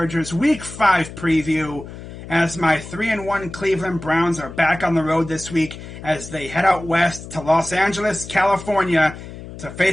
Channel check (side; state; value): left; noise; hum, 13 dB below the sound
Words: Week 5 preview as my 3-1 Cleveland Browns are back on the road this week as they head out west to Los Angeles, California to